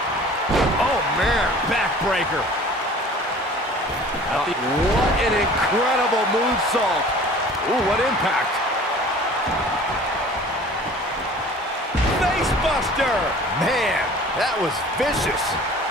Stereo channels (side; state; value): both; normal; correlation 0.46